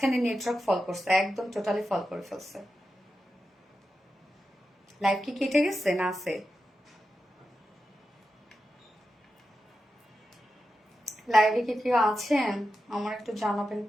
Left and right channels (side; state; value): both; normal; correlation 0.90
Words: নেটওয়ার্ক ফল করছে, একদম টোটালি ফল করে ফেলছে। লাইভ কি কেটে গেছে না আছে? লাইভে কি কেউ আছেন? আমার একটু জানাবেন